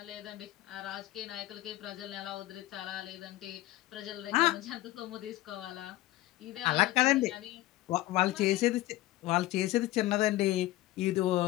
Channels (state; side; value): quieter; right; 16.8 dB